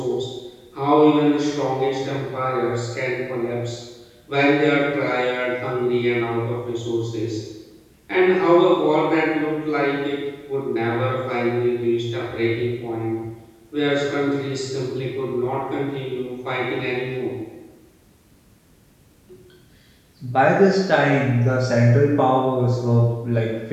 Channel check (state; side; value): identical; both; correlation 1.00